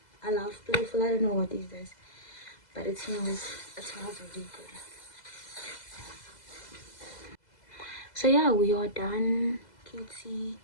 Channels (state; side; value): late; right; 2.0 ms